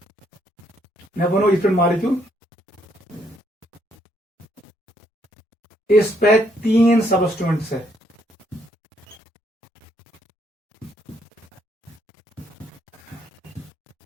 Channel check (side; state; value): both; normal; correlation 0.71